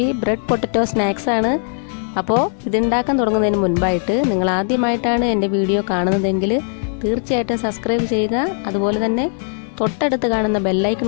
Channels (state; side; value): silent; right; 61 dB below the other